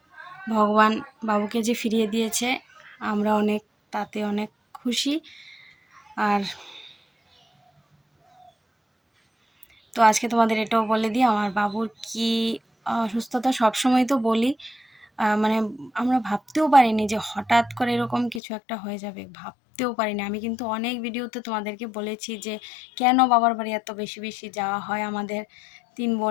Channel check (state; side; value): drops out; right; at 18.4 s